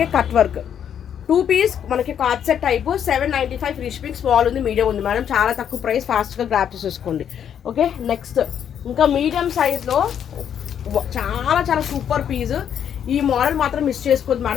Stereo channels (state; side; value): quieter; right; 8.8 dB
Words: cut work. 2 పీస్ మనకి card set type 795 free shipping. Small ఉంది, మీడియం ఉంది మేడం, చాలా తక్కువ ప్రైస్, ఫాస్ట్గా గ్రాప్ చేసేసుకోండి. ఓకే, నెక్స్ట్ ఇంకా మీడియం సైజ్లో చాలా చాలా సూపర్ పీస్. ఈ మోడల్ మాత్రం మిస్ చేసుకోవద్దు